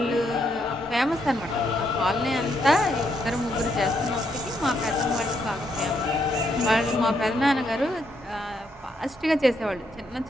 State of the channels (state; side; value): normal; both; correlation 0.76